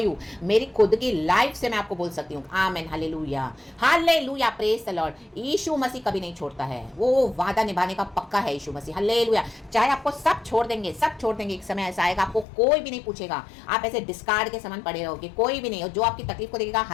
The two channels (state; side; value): drops out; right; at 12.5 s